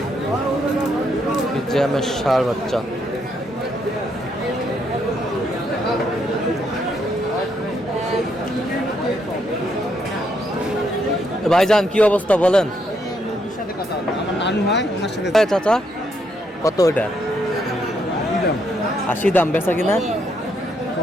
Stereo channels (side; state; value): both; normal; correlation 0.75